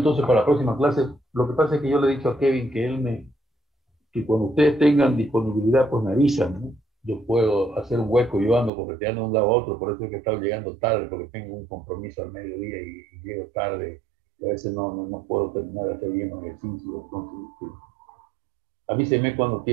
para la próxima clase, lo que pasa es que yo le he dicho a Kevin que cuando ustedes tengan disponibilidad, pues me avisan, ¿no? Yo puedo hacer un hueco, yo ando correteando de un lado a otro, por eso es que he estado llegando tarde, porque tengo un compromiso al mediodía y llego tarde, y a veces no puedo terminar de hacer bien los ejercicios. Entonces, avísenme cuando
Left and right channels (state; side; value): drops out; left; at 8.7 s